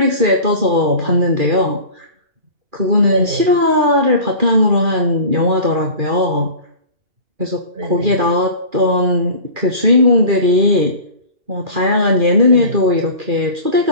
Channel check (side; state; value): left; late; 2.4 ms